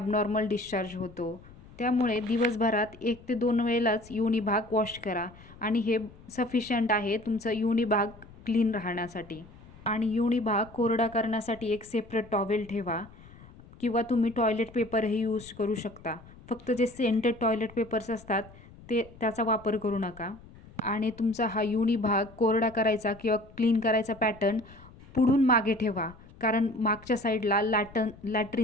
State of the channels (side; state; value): left; noise; rumble, 21 dB below the sound